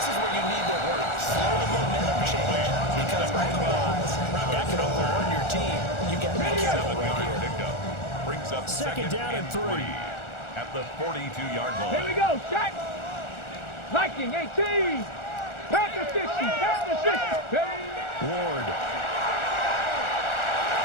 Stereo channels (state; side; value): late; right; 1.4 ms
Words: is where you need to slow the momentum change. Because otherwise, that could overrun your team. You've got to be careful right here. Pickup brings up 2nd down and 3. At the 42-yard line. Here we go, shot. Viking 18. Panther 60. Panther 60. Ward.